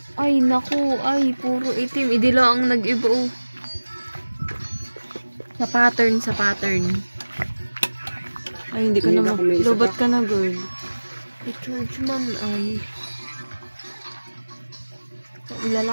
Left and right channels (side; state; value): both; inverted; correlation -1.00